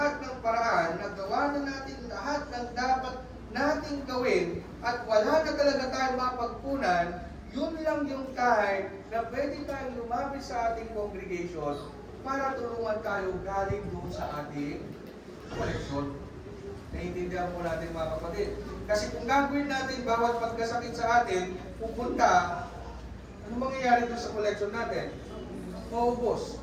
ng paraan, nagawa na natin lahat ng dapat nating gawin, at wala na talaga tayong mapagpunan, yun lang yung time na pwede tayong lumapit sa ating congregation para tulungan tayo galing doon sa ating collection. Naiintindihan po natin mga kapatid. Kasi kung gagawin natin bawat pagkasakit sa atin, pupunta, ano mangyayari doon sa collection natin? Maubos.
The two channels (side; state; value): both; identical; correlation 1.00